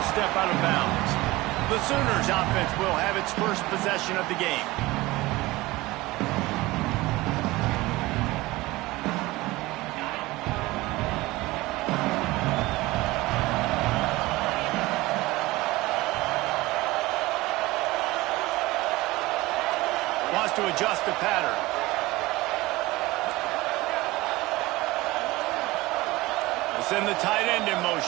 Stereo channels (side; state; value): left; quieter; 19.9 dB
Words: step out of bounds. The Sooners offense will have its first possession of the game. Wants to adjust the pattern. Send the tight end in